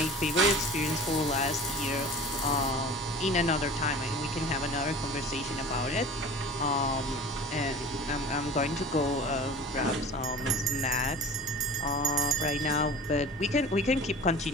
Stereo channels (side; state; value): both; normal; correlation 0.38